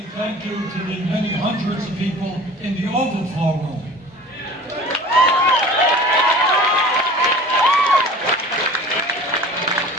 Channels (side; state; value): both; normal; correlation 0.42